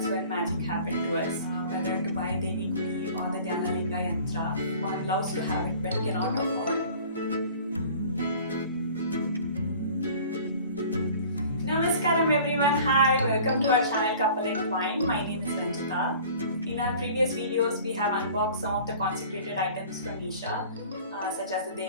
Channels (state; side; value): inverted; both; correlation -0.46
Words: when magic happened to us. Whether to buy Devi Gudi or the Dhyanalinga Yantra, one loves to have it but cannot afford. Namaskaram everyone, hi, welcome to our channel Couple and Wine. My name is Ranjita. In our previous videos, we have unboxed some of the consecrated items from Isha, such as the